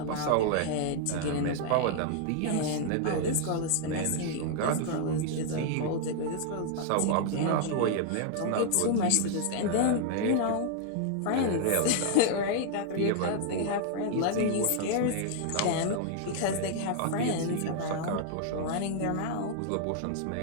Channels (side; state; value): both; different; correlation 0.00